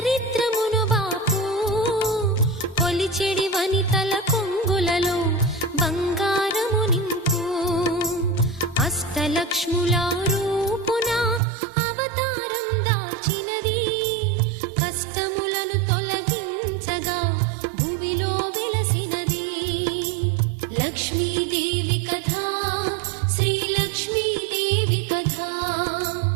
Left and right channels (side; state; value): left; drops out; at 11.4 s